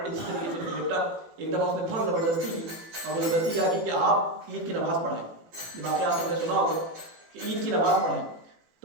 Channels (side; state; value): left; late; 18 ms